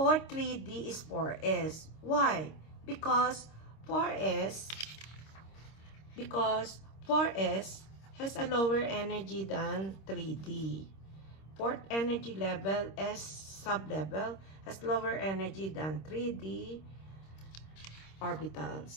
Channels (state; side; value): late; right; 26 ms